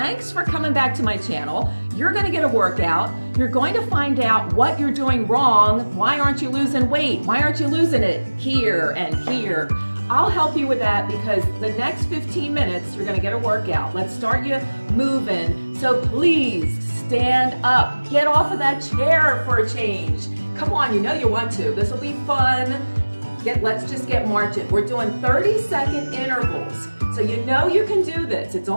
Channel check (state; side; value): inverted; both; correlation -1.00